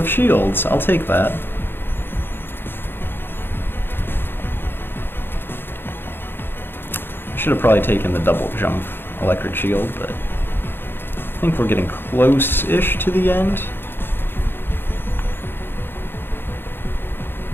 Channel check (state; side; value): late; right; 0.10 ms